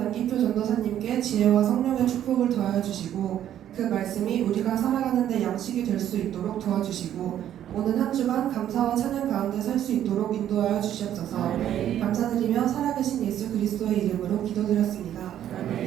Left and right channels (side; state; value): left; quieter; 11.0 dB